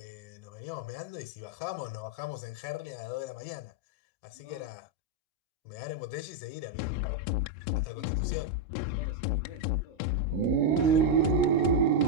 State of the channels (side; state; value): right; late; 25 ms